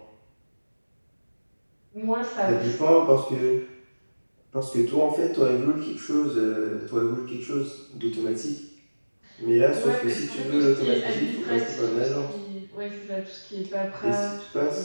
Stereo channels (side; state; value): both; inverted; correlation -1.00